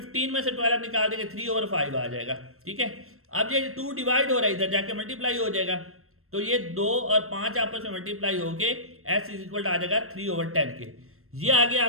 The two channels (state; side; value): late; left; 0.62 ms